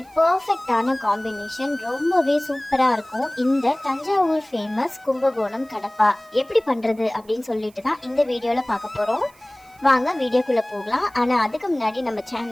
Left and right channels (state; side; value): noise; right; hiss, 29 dB below the sound